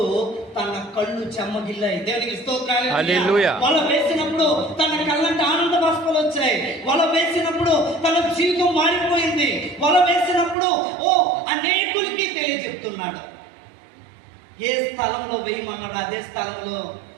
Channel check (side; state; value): left; drops out; at 10.6 s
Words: తన కళ్ళు చెమ్మగిల్లాయి. దేవునికి స్తోత్రాలు. హల్లెలూయా. వల వేసినప్పుడు తన కళ్ళంటే ఆనంద బాష్పాలు వచ్చాయి. వల వేసినప్పుడు తన జీవితం మారిపోయింది. వల వేసినప్పుడు అనేకులకి తెలియజెప్తున్నాడు. ఏ స్థలంలో వేయమన్నాడు అదే స్థలంలో